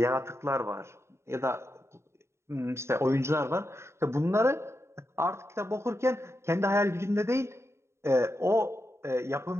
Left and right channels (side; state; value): left; late; 0.13 ms